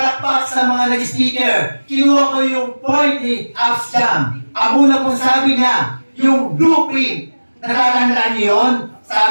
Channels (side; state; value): both; inverted; correlation -1.00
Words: sa mga nag-speaker. Kinuha ko yung point ni Absjam. Ang una pong sabi niya, yung blueprint. Natatandaan niyo yun?